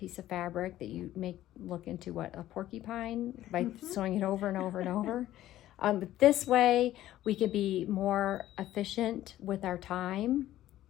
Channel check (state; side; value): quieter; right; 13.8 dB